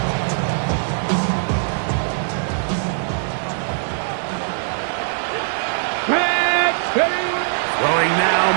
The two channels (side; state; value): left; silent; digital silence